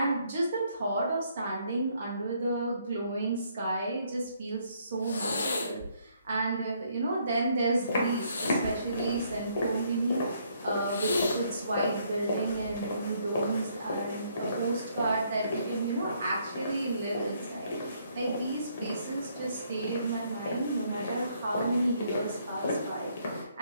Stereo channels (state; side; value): inverted; both; correlation -0.69